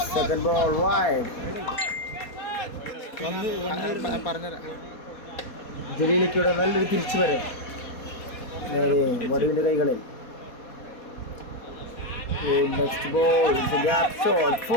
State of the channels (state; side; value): late; right; 4.2 ms